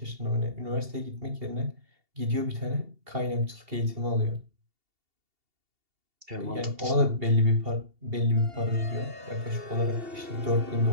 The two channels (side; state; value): left; late; 2.8 ms